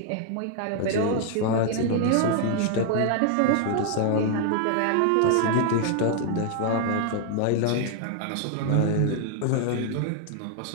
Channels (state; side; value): different; both; correlation 0.00